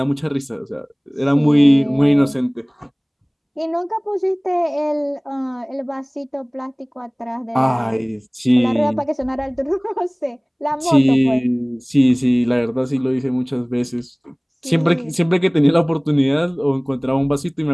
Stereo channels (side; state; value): both; identical; correlation 1.00